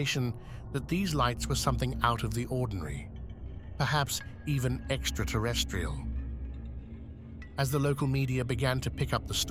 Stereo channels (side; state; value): both; identical; correlation 1.00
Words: that these lights were something out of the ordinary, perhaps even extraterrestrial. As the local media began to pick up the